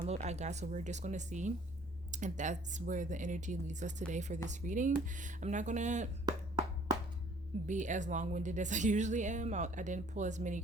I got, so we're just going to see if that's where the energy leads us today for this reading. I'm not going to be as long-winded as I usually am. I didn't pull as many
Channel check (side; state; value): both; normal; correlation 0.56